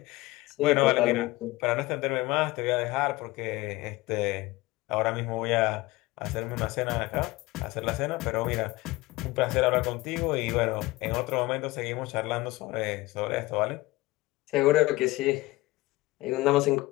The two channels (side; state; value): right; quieter; 20.1 dB